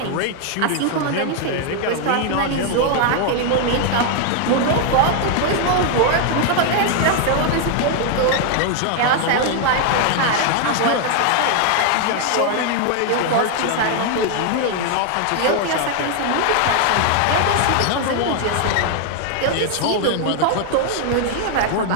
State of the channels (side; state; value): both; different; correlation 0.00